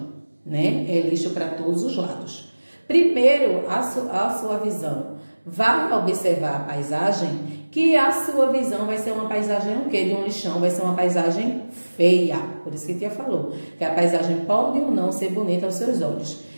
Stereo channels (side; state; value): both; inverted; correlation -1.00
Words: né? É lixo para todos os lados. Primeiro, a sua visão vai observar a paisagem, que a sua visão vai ser uma paisagem o quê? De um lixão, vai ser uma paisagem feia. Por isso que a tia falou, que a paisagem pode ou não ser bonita aos seus olhos.